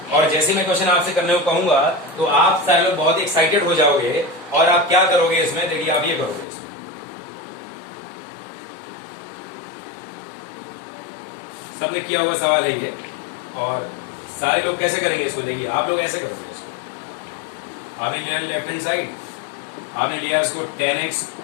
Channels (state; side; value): drops out; right; at 6.5 s